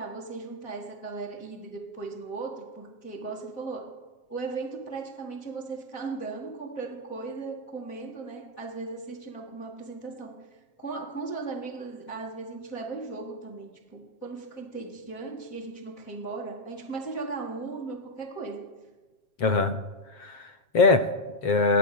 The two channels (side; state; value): right; late; 7.5 ms